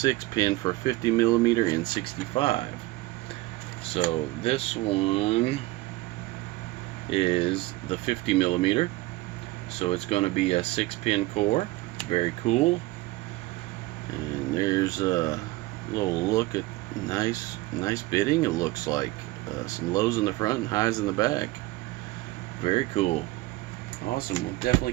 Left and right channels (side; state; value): left; quieter; 19.6 dB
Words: for 50mm and 65. So this one is the 50mm, so it's going to be a 6-pin core. Very cool. And there's a little look at nice bitting. It looks like some lows in the front and highs in the back. Very cool. Awesome. We'll definitely